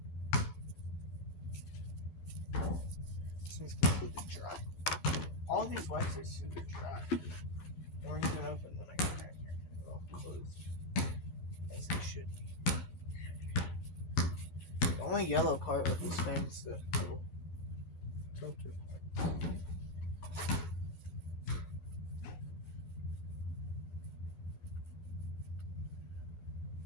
This one's completely dry. All these wipes are super dry. They weren't even open when I got back here. They're all closed. As they should be. The only yellow part of this fan is the little filter.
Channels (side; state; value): right; late; 12 ms